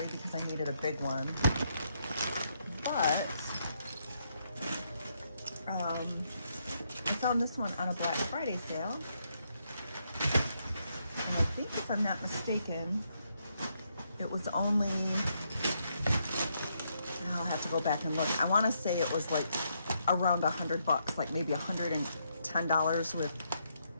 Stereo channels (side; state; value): both; inverted; correlation -0.77